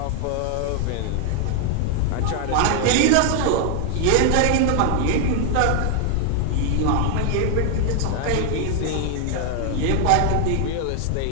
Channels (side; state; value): both; different; correlation 0.00